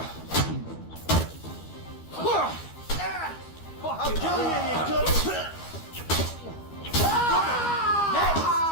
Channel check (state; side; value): late; right; 12 ms